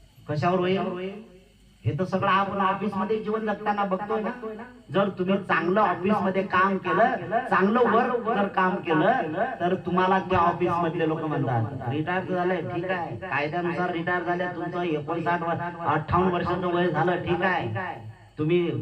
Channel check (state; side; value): identical; both; correlation 1.00